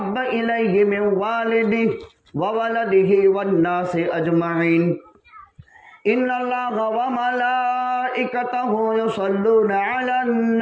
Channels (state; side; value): identical; both; correlation 1.00